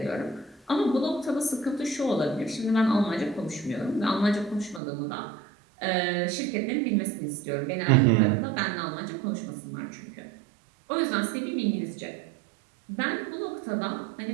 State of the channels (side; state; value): left; drops out; at 4.8 s